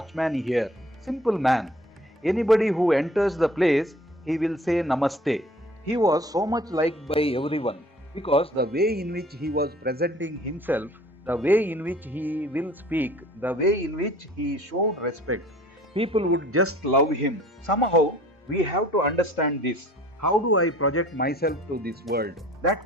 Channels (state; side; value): normal; both; correlation 0.50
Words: here, simple man. Anybody who enters the place, he will say Namaste. He was so much liked by everyone because the way in which he was presenting himself, the way in which he will speak, the way in which he showed respect, people would just love him. Somehow, we have to understand this. How do I project myself to this world?